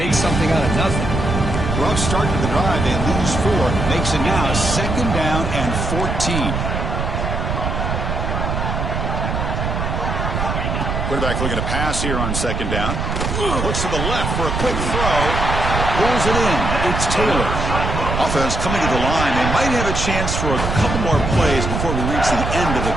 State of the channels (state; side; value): noise; right; rumble, 2 dB below the sound